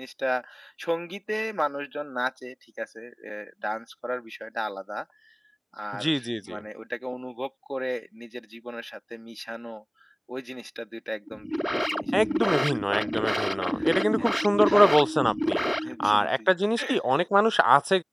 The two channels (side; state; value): both; identical; correlation 1.00